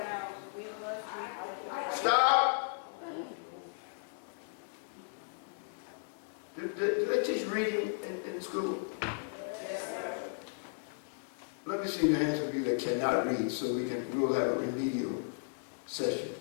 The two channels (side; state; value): right; silent; digital silence